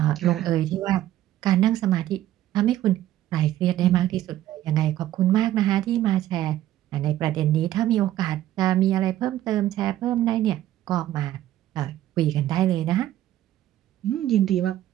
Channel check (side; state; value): left; quieter; 13.3 dB